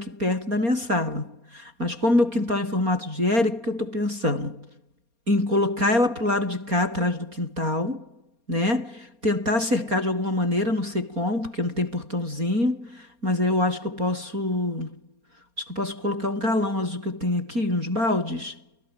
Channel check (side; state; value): left; late; 4.3 ms